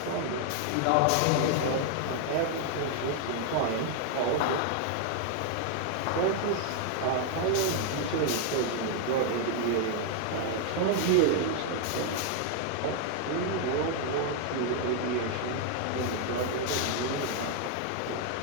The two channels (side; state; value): both; different; correlation 0.00